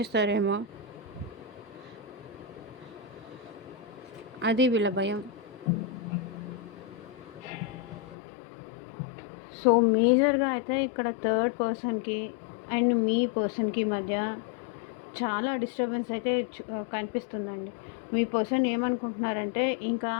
అది వీళ్ళ భయం. సో మేజర్గా అయితే ఇక్కడ థర్డ్ పర్సన్కి అండ్ మీ పర్సన్కి మధ్య చాలా డిస్టర్బెన్స్ అయితే కనిపిస్తుందండి. మీ పర్సన్ ఏమనుకుంటున్నారంటే ఇంకా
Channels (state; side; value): drops out; right; at 8.2 s